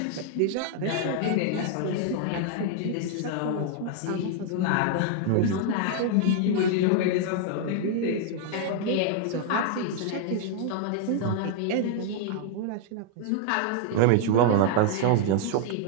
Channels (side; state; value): both; different; correlation 0.00